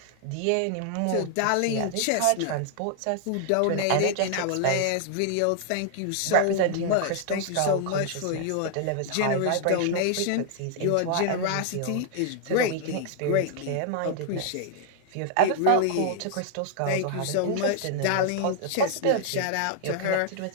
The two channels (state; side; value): different; both; correlation -0.01